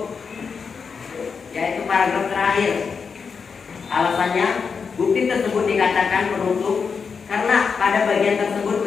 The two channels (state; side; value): quieter; right; 5.7 dB